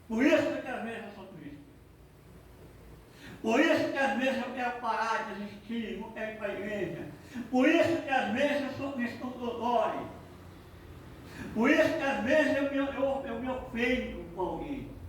Por isso que às vezes eu sou triste. Por isso que às vezes eu quero parar de existir, não quero ir para a igreja. Por isso que às vezes eu sou cristão dodói. Por isso que às vezes eu me ofendo com alguém.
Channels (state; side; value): identical; both; correlation 1.00